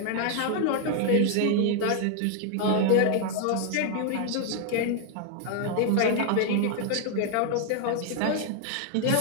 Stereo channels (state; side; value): different; both; correlation 0.00